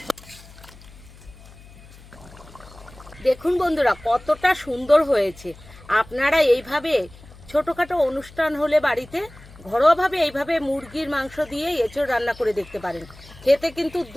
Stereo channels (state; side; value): noise; left; hum, 21 dB below the sound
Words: দেখুন বন্ধুরা কতটা সুন্দর হয়েছে। আপনারা এইভাবে ছোটোখাটো অনুষ্ঠান হলে বাড়িতে ঘরোয়াভাবে এইভাবে মুরগির মাংস দিয়ে এঁচড় রান্না করে দেখতে পারেন। খেতে কিন্তু